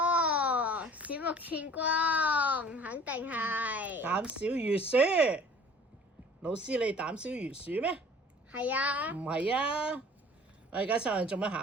喎，鼠目寸光，肯定係。膽小如鼠。老師，你膽小如鼠咩？係啊。唔係啊！我而家上嚟做乜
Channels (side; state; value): both; normal; correlation 0.49